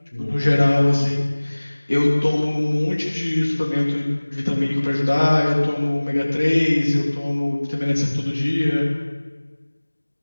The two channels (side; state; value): both; inverted; correlation -1.00